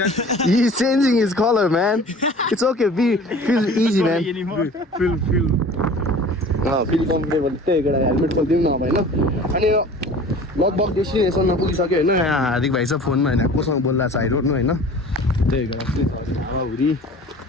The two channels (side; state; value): both; normal; correlation 0.43